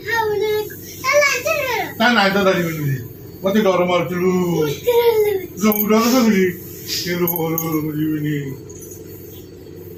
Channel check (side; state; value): both; identical; correlation 1.00